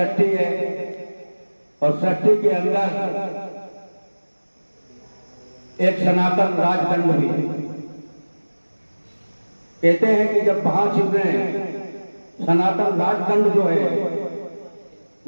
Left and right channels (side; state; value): both; inverted; correlation -1.00